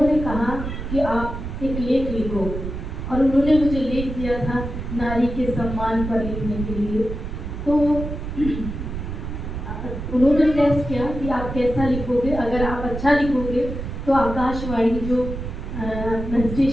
कहा कि आप एक लेख लिखो, और उन्होंने मुझे लेख दिया था नारी के सम्मान पर लिखने के लिए। तो उन्होंने टेस्ट किया कि आप कैसा लिखोगे, अगर आप अच्छा लिखोगे तो आकाशवाणी जो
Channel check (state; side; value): noise; right; rumble, 6 dB below the sound